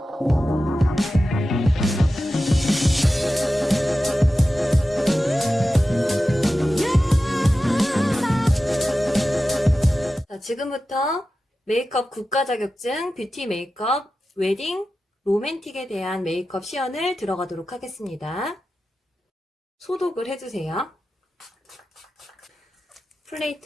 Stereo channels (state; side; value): normal; both; correlation 0.93